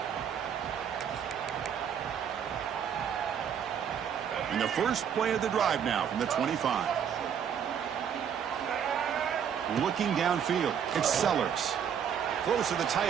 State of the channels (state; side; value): quieter; left; 8.2 dB